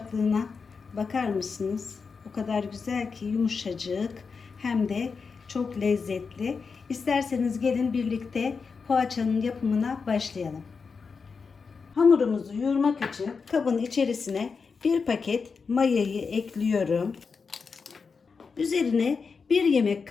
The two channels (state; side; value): quieter; right; 5.2 dB